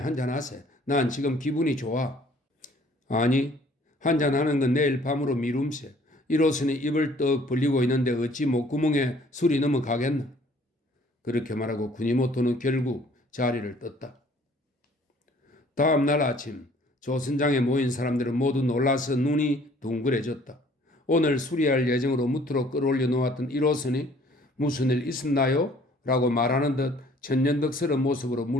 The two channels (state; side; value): normal; both; correlation 0.57